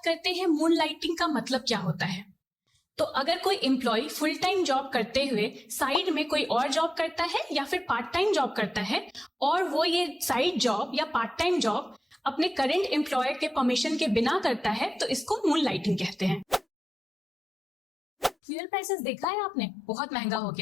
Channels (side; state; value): both; normal; correlation 0.94